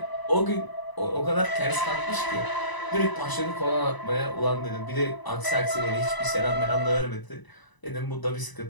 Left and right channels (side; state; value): right; late; 1.0 ms